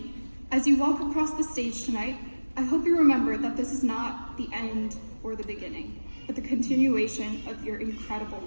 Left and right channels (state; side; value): inverted; both; correlation -1.00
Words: as you walk across the stage tonight, I hope you remember that this is not the end or the beginning, but the continuation of your incredible